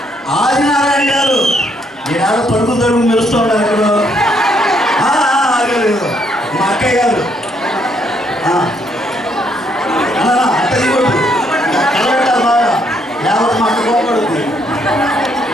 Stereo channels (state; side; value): normal; both; correlation 0.71